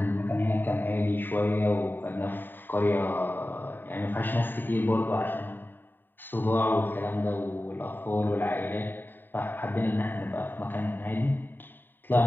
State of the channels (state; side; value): late; right; 0.093 ms